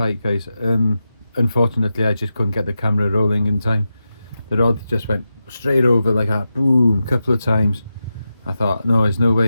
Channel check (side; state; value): both; inverted; correlation -0.90